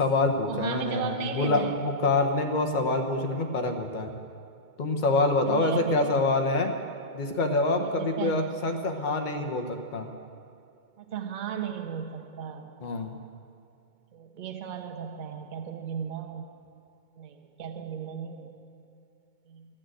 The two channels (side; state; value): right; late; 2.2 ms